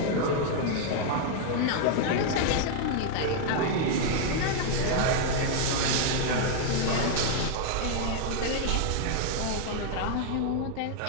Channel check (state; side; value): different; both; correlation 0.00